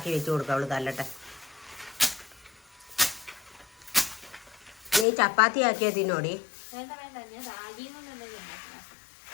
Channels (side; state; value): right; drops out; at 5.1 s